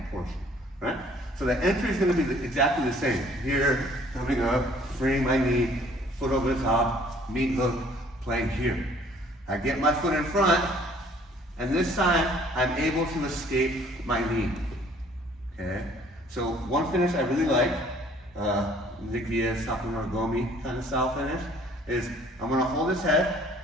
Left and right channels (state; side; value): normal; both; correlation 0.57